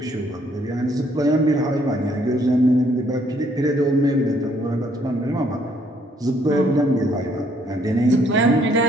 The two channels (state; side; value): normal; both; correlation 0.66